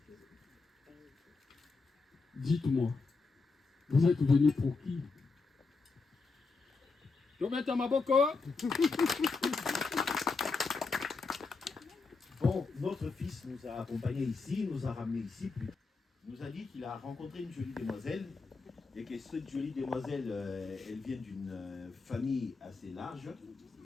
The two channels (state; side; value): quieter; right; 4.2 dB